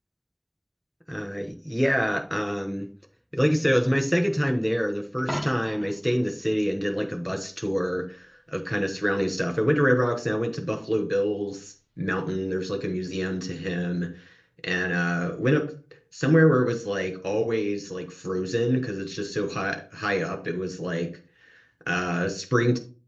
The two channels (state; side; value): identical; both; correlation 1.00